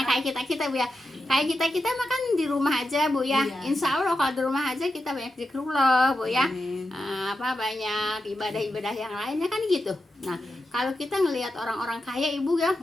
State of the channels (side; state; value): both; normal; correlation 0.88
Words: kayak kita Bu ya. Kayak kita makan di rumah aja Bu ya. Insya Allah kalau di rumah aja kita banyak zikrullah Bu ya. Banyak ibadah-ibadah yang lainnya kan gitu. Nah, kalau kita ngelihat orang-orang kaya Ibu ya,